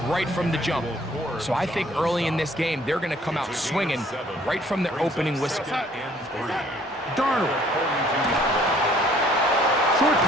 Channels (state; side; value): normal; both; correlation 0.59